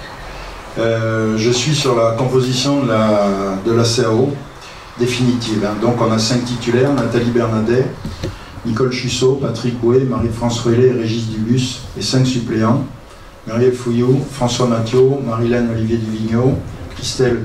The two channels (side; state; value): both; identical; correlation 1.00